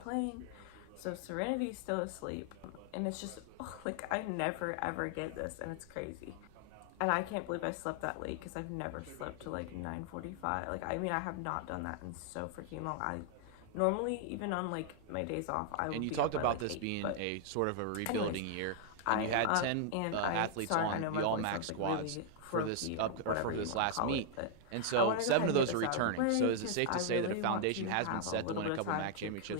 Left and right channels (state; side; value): different; both; correlation 0.00